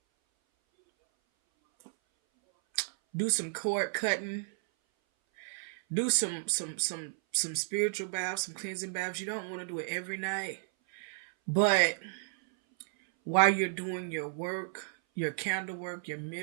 Do some cord cutting. Do some spiritual baths, some cleansing baths. You don't want to do it every night, but while you're doing your work, your candle work, your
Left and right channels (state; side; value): silent; left; 56 dB below the other